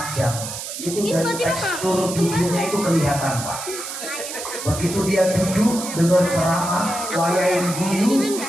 itu dari tekstur tubuhnya itu kelihatan Pak. Begitu dia duduk dengan ceramah, wayain guyu,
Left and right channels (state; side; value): noise; right; hiss, 8 dB below the sound